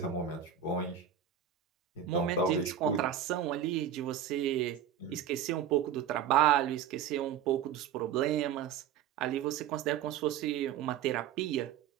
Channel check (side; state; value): left; quieter; 9.3 dB